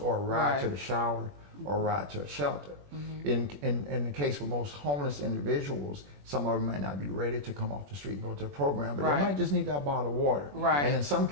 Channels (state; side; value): late; left; 21 ms